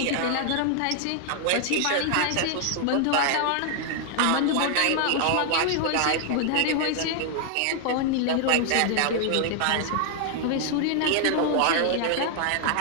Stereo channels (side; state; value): both; different; correlation 0.00